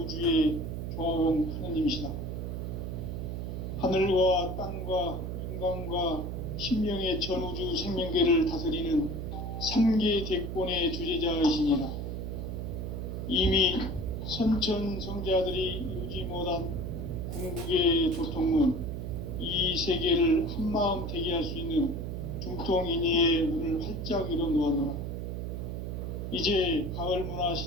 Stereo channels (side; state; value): right; noise; hum, 4 dB below the sound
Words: 조화원 하느님이시다. 하늘과 땅과 인간과 신명의 전우주 생명계를 다스리는 3계 대권의 주재자이시니라. 이미 선천성자들이 이루지 못한 궁극의 도통은 이 세계를 한마음 되게 할 수 있는 중통인의의 문을 활짝 열어 놓았노라. 이제 가을 문화